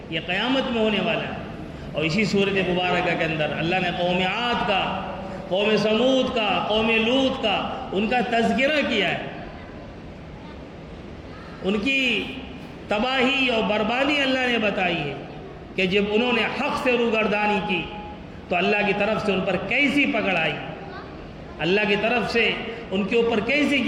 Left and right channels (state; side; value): identical; both; correlation 1.00